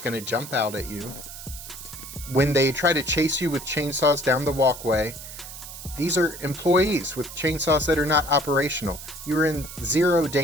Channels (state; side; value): noise; right; hiss, 12 dB below the sound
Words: going to jump out at you. When they try to chase you with chainsaws down the walkway, these are employees with chainsaws that are not operational. You're in zero